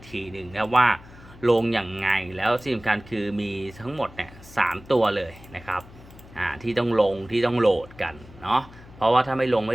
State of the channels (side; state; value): left; noise; hum, 21 dB below the sound